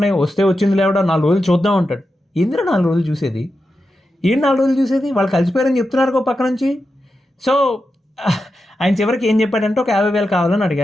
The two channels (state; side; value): normal; both; correlation 0.89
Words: వస్తే వచ్చింది లేవడా 4 రోజులు చూద్దాం అంటాడు. ఎందుకు 4 రోజులు చూసేది? ఏం 4 రోజులు చూసేది? వాళ్ళు కలిసిపోయారని చెప్తున్నారు ఒక పక్క నుంచి. సో ఆయన చివరికి ఏం చెప్పాడంటే ఒక 50,000 కావాలని